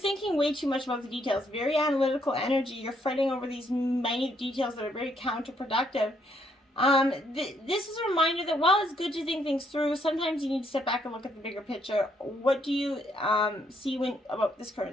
way too much about the details. Very analytical energy. You're fretting over these minute details that are very counterproductive. This is a reminder that while it's good to think things through, sometimes you need to step back and look at the bigger picture. What do you see about this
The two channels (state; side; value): normal; both; correlation 0.72